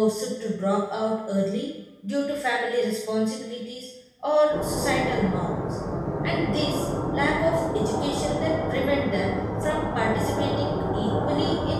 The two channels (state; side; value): identical; both; correlation 1.00